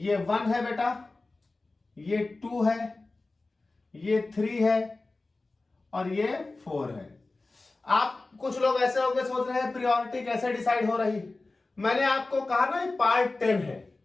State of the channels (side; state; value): right; quieter; 3.3 dB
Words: 1 है बेटा, ये 2 है, ये 3 है और ये 4 है। आप कुछ लोग ऐसे होंगे सोच रहे हैं प्रायोरिटी कैसे डिसाइड हो रही। मैंने आपको कहा ना ये पार्ट 10 है।